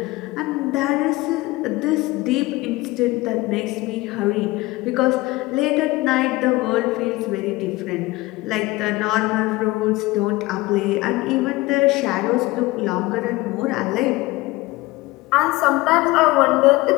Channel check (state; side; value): quieter; right; 20.7 dB